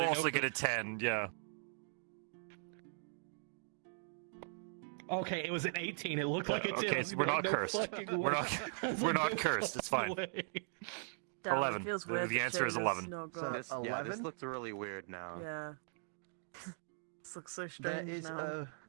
also get a 10, yeah. Okay, it was an 18. It looked like a 10. Okay, so we're not cursed. We're not No cursed. It's fine. way. 11. It feels weird. The answer is 11. This looks really weird now. Yeah. This looks so strange now.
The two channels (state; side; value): silent; left; digital silence